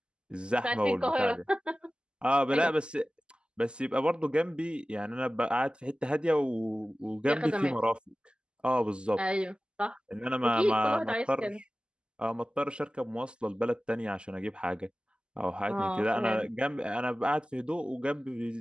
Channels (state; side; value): late; left; 0.050 ms